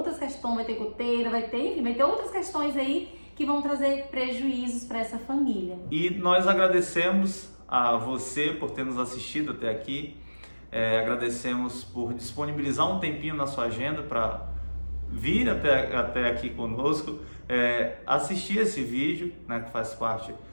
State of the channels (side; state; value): both; inverted; correlation -1.00